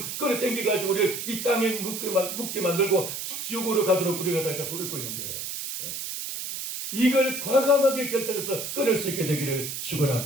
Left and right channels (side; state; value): right; noise; hiss, 5 dB below the sound